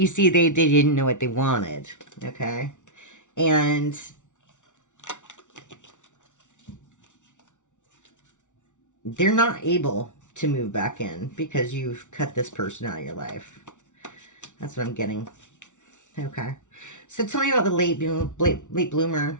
see, they didn't know what they wanted. Okay. And they're not able to move back in because you've cut this person out of your life. That's what I'm getting. Okay. So tell me about the late bloomer.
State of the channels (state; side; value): late; right; 0.86 ms